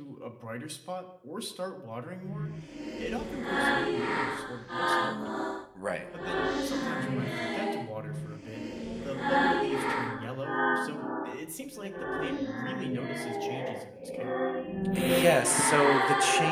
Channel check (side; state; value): both; identical; correlation 1.00